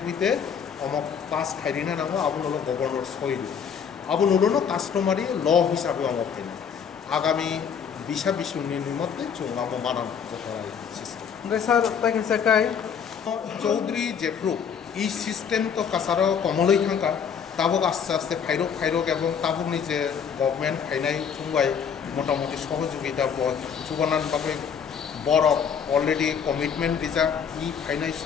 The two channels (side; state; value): right; quieter; 7.2 dB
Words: হইতে পাস খাইরিনা নাঙ্গো আবুন হলো গভর্নর সইল আবুন হলো কাস্টমারি ল হিসাবে ফাইনা আগামী 20 মধ্যে চুঙ্গামো মানান সিস্টেম স্যার তাকে সাকাই চৌধুরী জেফ্রু এই সিস্টেম তো কাছারও কমলই থাকা তাবক আস্তে আস্তে ফাইরক এবং তাবকনি যে গভর্নমেন্ট ফাইনাই চুঙ্গাই মোটামুটি সহযোগিতা চুবানানভাবে বরফ অলরেডি কমিটমেন্ট দিজা ই ফাইনাই